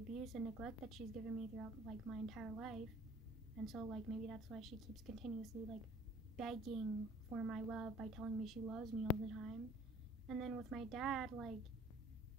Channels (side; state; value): both; normal; correlation 0.53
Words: and neglect that she's given me throughout, like, my entire life. And so, like, maybe that's why she keeps continuously, like, begging for my love by telling me she loves me all the time. And then with my dad, like,